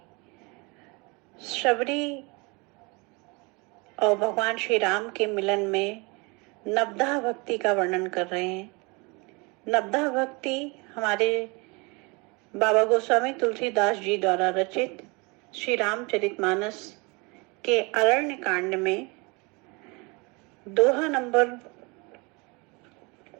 शबरी और भगवान श्री राम के मिलन में नवधा भक्ति का वर्णन कर रहे हैं। नवधा भक्ति हमारे बाबा गोस्वामी तुलसीदास जी द्वारा रचित श्री रामचरितमानस के अरण्य कांड में दोहा नंबर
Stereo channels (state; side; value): quieter; left; 28.3 dB